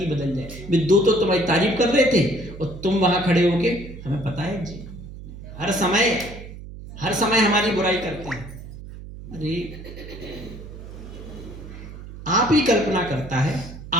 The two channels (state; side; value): noise; right; hum, 13 dB below the sound